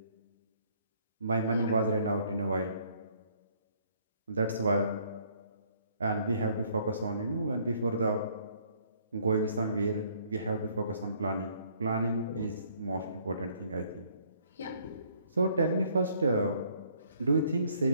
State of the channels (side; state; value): both; inverted; correlation -0.63